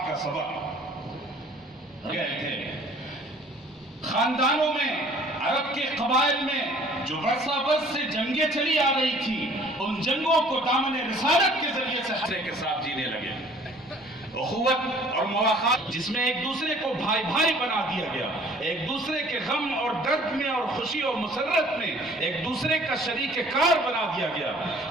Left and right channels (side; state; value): both; normal; correlation 0.53